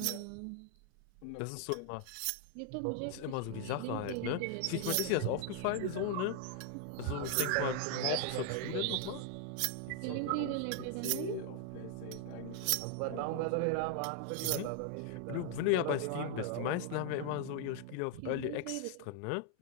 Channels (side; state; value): both; different; correlation 0.00